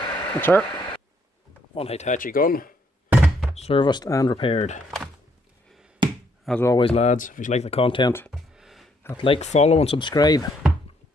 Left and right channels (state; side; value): normal; both; correlation 0.70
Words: That's her. One Hitachi gun, serviced and repaired. As always, lads, if you like the content, hit like, follow and subscribe.